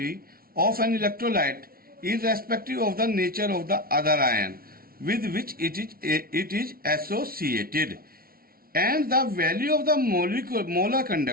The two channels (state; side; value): late; left; 0.43 ms